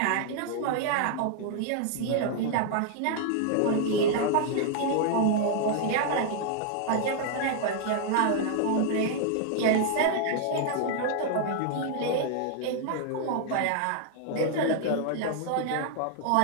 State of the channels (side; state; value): both; different; correlation 0.00